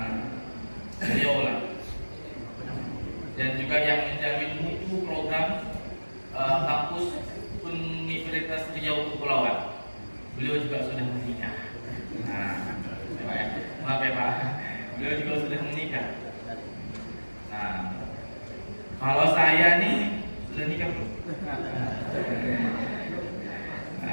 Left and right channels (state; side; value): inverted; both; correlation -1.00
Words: Beliau lah. Dan juga yang menjamin mutu program kampus Universitas Riau Kepulauan. Beliau juga sudah menikah. Maaf ya Pak, beliau juga sudah menikah. Kalau saya nih sudah nikah belum?